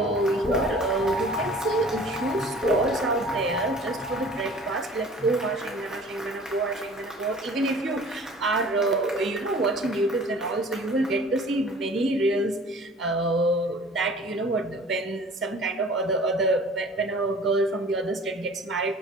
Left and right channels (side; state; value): both; normal; correlation 0.47